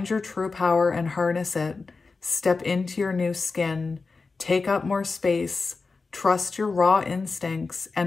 your true power and harness it. Step into your new skin. Take up more space. Trust your raw instincts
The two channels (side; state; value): right; quieter; 4.2 dB